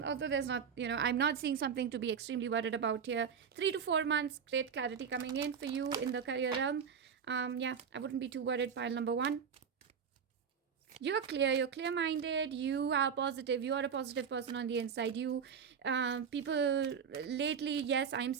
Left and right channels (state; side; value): quieter; left; 7.0 dB